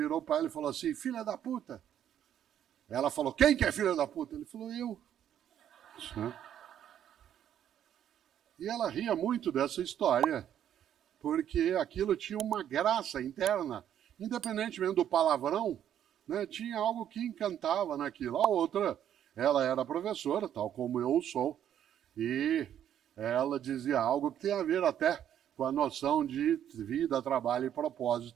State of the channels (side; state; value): left; quieter; 10.2 dB